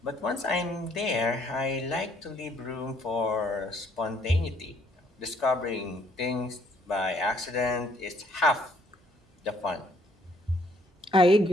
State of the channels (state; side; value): normal; both; correlation 0.65